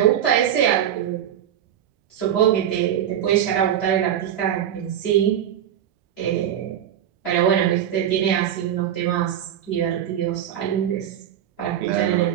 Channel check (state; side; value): quieter; left; 10.3 dB